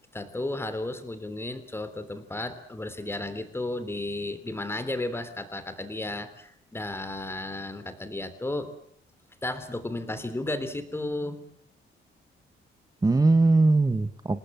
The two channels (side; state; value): both; normal; correlation 0.88